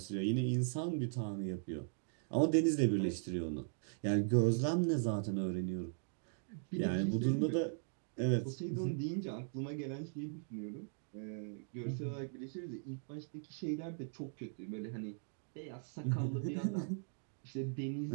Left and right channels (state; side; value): silent; left; digital silence